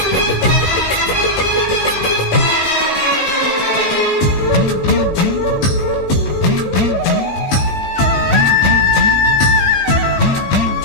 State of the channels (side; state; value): right; late; 17 ms